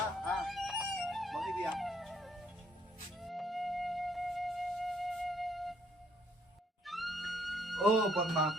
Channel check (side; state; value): both; normal; correlation 0.67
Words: বহিবি আহ। পদ্মা